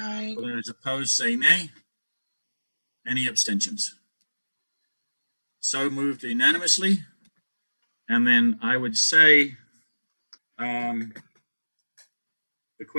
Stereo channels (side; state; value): both; inverted; correlation -1.00